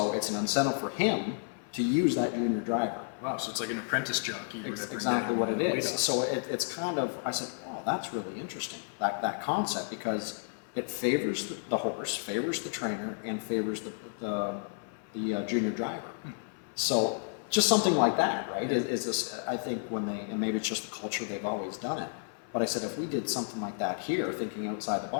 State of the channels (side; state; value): right; silent; 55 dB below the other